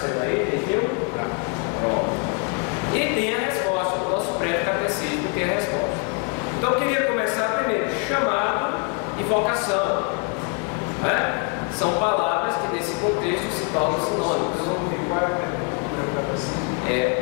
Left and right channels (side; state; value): right; quieter; 32.5 dB